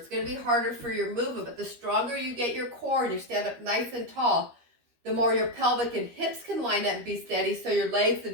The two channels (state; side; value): late; left; 13 ms